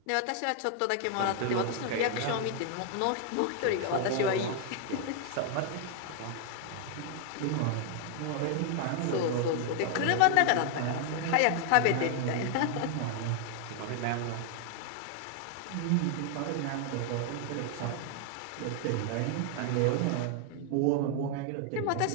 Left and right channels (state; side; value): different; both; correlation 0.00